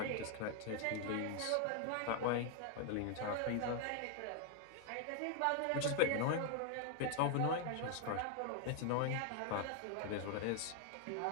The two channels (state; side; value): different; both; correlation 0.00